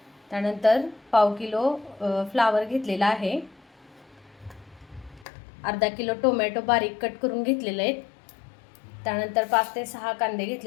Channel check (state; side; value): drops out; right; at 5.2 s